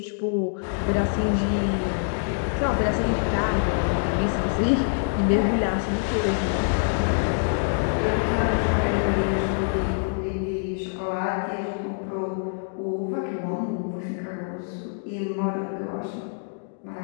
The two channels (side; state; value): right; silent; digital silence